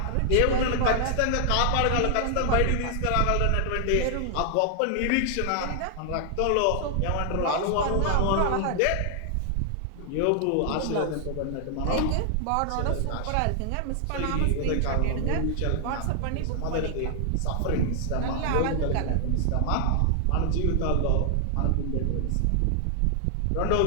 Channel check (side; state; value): both; different; correlation 0.00